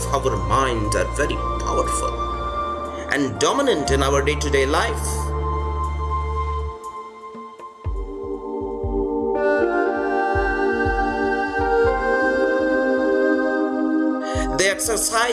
our mind are very powerful and dominant in our day-to-day life. They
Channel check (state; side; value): identical; both; correlation 1.00